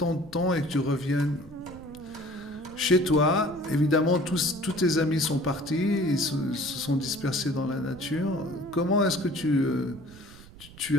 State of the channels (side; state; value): right; noise; rumble, 19 dB below the sound